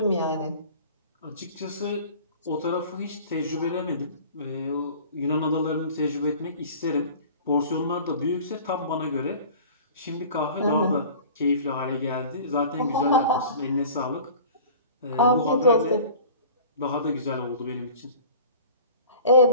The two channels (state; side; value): inverted; both; correlation -0.43